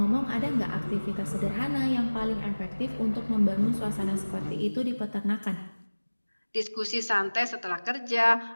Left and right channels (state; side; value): inverted; both; correlation -1.00